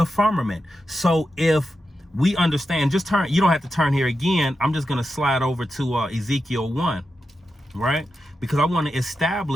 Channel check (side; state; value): both; normal; correlation 0.89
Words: firmament. So if we understand, just turn, you don't have to turn here again. I'm just going to slide over to Ezekiel 1, right? Because I want to